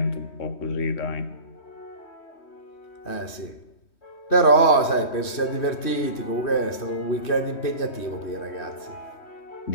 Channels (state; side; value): late; right; 3.1 ms